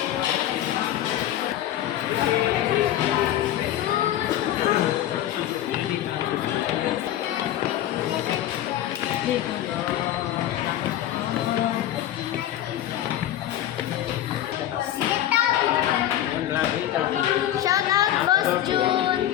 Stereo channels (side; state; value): right; quieter; 12.4 dB